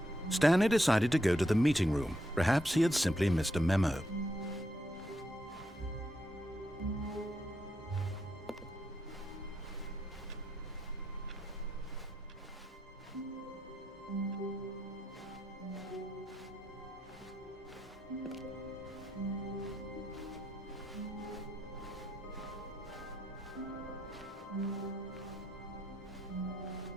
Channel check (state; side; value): normal; both; correlation 0.80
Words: Stanley decided to go to the meeting room. Perhaps he had simply missed a memo.